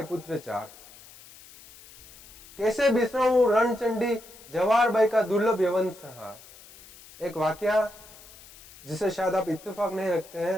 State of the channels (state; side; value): noise; left; hiss, 21 dB below the sound